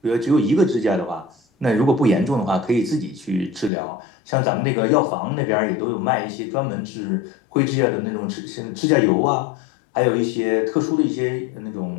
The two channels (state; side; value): drops out; right; at 3.7 s